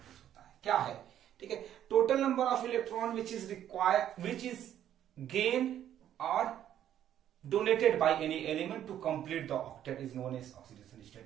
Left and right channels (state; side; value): quieter; left; 10.9 dB